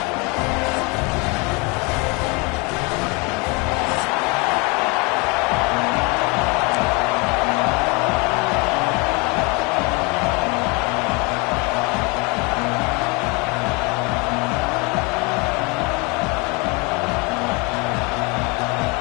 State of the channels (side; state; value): right; quieter; 29.1 dB